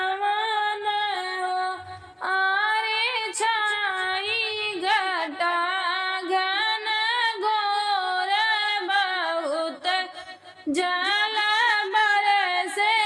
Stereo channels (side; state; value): both; identical; correlation 1.00